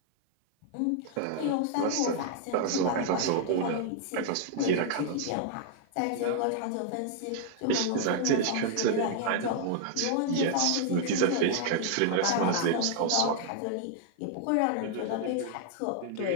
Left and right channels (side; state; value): both; different; correlation -0.01